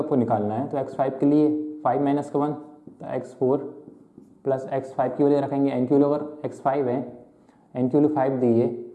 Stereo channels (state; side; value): identical; both; correlation 1.00